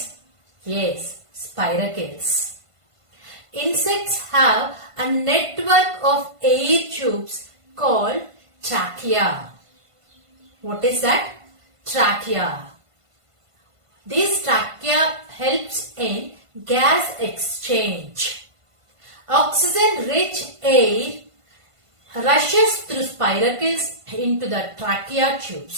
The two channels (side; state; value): left; late; 1.5 ms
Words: Yes, spiracles. Insects have a network of air tubes called trachea. What is that? Trachea. This trachea helps in gas exchange. Oxygen-rich air rushes through spiracles into the trachea